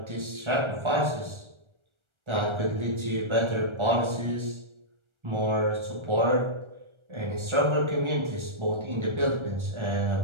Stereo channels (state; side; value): late; left; 1.4 ms